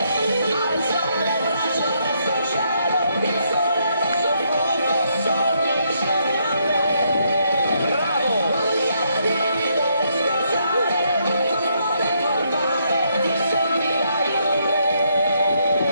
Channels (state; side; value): inverted; both; correlation -0.74